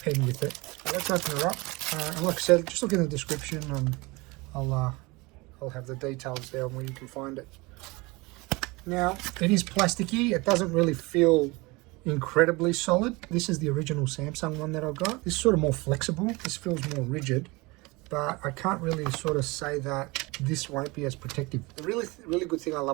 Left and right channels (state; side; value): quieter; left; 24.4 dB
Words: with it. So let's open it up. And like I said, just look in the description and I'll have the details there on where you can find it. Now, it is plasticky. It doesn't really feel incredibly solid. This is the original Samsung one that I got. This is sort of more flexible. This feels more rigid, but I can't really sort of say that this won't be as protective. The really good thing I